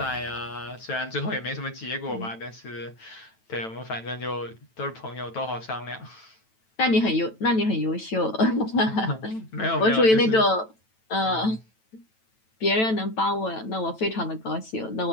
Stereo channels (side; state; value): right; late; 9.1 ms